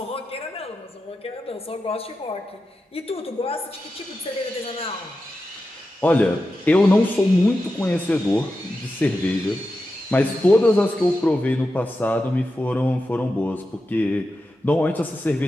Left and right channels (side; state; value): both; normal; correlation 0.91